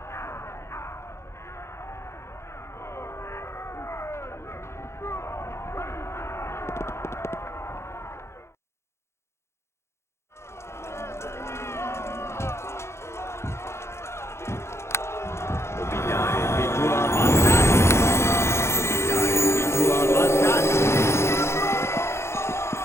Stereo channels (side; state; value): right; late; 0.13 ms